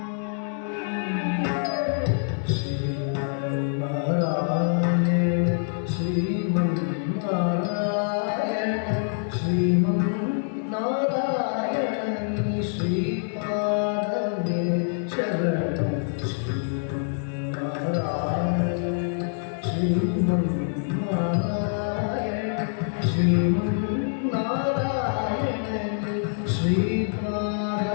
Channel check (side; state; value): right; silent; 60 dB below the other